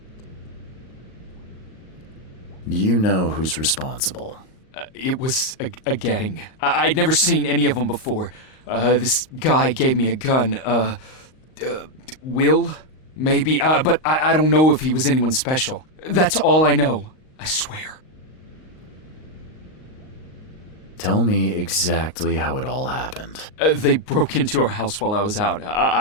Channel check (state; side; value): late; right; 38 ms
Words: Do you know who's responsible? It was a gang. I'd never seen any of them before. This guy gave me a gun. Will? Maybe. But I don't know if he was anyone special. That's all I know. I swear. Tell me exactly how it all happened. They broke into our house while I was out.